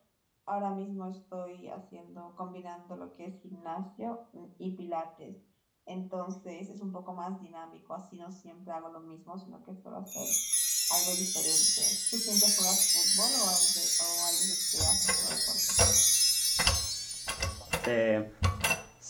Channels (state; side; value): identical; both; correlation 1.00